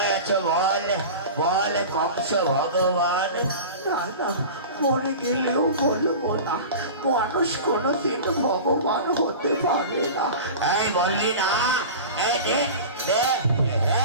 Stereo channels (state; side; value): inverted; both; correlation -0.33